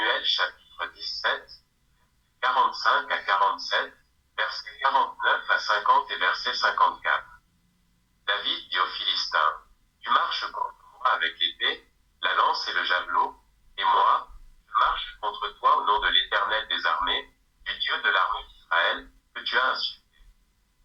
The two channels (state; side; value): identical; both; correlation 1.00